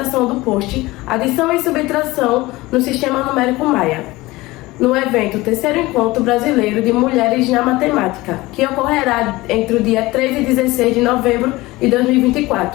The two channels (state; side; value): quieter; right; 20.0 dB